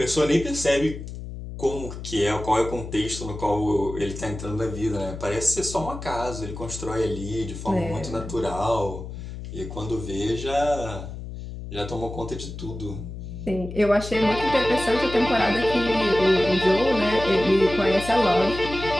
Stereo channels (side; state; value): left; noise; hum, 10 dB below the sound